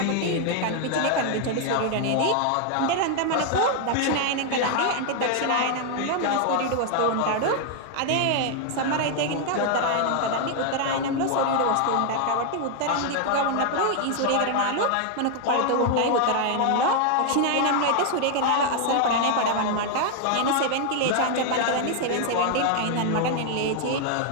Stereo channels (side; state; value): both; different; correlation 0.00